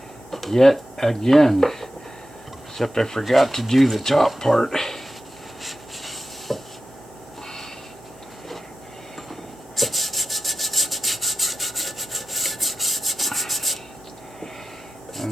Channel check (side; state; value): both; normal; correlation 0.93